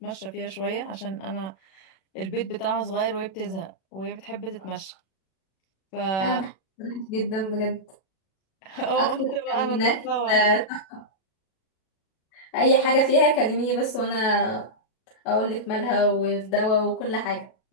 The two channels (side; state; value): right; late; 37 ms